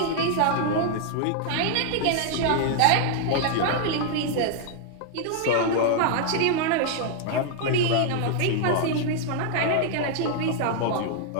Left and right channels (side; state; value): both; different; correlation -0.01